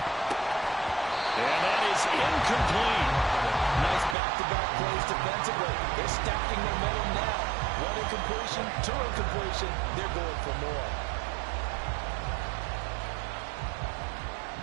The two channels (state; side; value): drops out; left; at 4.2 s